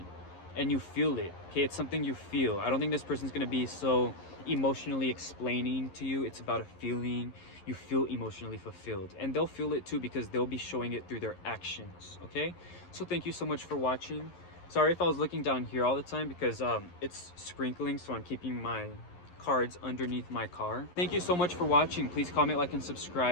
and you feel it, okay? It's something you feel. I don't think this person's gonna be so emotionally explaining to you. It's about a feeling. You feel emotionally fulfilled, and they'll feel it too, because they'll be showing it through their actions, okay? So thank you so much for watching. Sorry if I was looking down here all the time because it's sprinkling, so I'm keeping my cards underneath my car. Thank you so much for watching. Please comment, like, and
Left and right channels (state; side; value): late; right; 11 ms